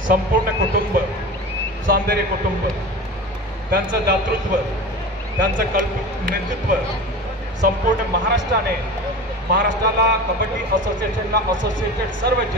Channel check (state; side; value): normal; both; correlation 0.32